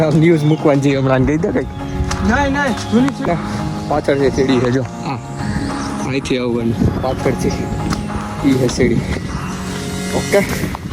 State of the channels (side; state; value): both; identical; correlation 1.00